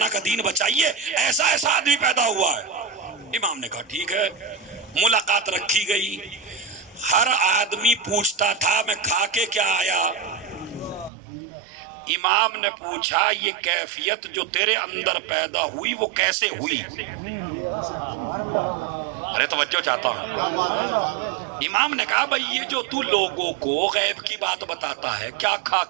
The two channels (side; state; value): left; drops out; at 11.1 s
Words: کا دین بچائیے، ایسا آدمی پیدا ہوا ہے۔ امام نے کہا ٹھیک ہے، ملاقات رکھی گئی، ہر آدمی پوچھتا تھا میں کھا کے کیا آیا۔ امام نے پوچھا یہ کیفیت جو تیرے اندر پیدا ہوئی وہ کیسے ہوئی؟ ارے توجہ چاہتا ہوں۔ امام نے کہا بھئی یہ جو تو لوگوں کو غیب کی بات بتاتا ہے، کیا کھا